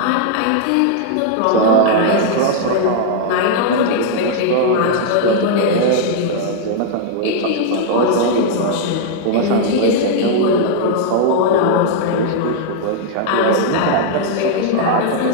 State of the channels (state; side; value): different; both; correlation -0.01